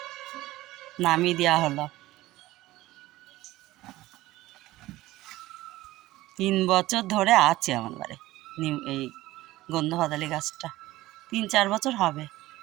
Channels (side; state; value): left; quieter; 17.2 dB